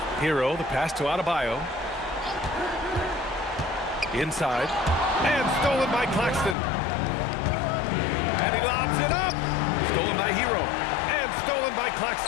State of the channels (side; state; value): right; drops out; at 6.6 s